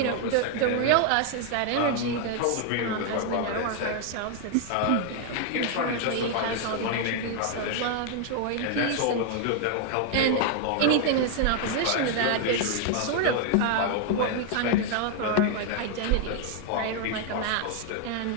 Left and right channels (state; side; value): different; both; correlation 0.00